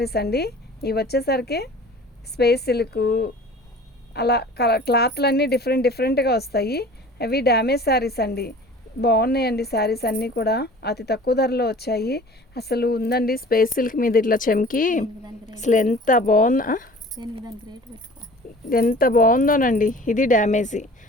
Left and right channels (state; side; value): normal; both; correlation 0.44